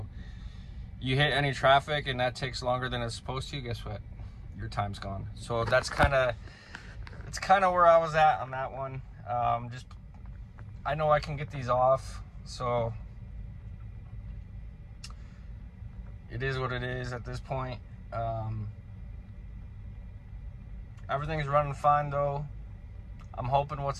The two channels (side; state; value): both; identical; correlation 1.00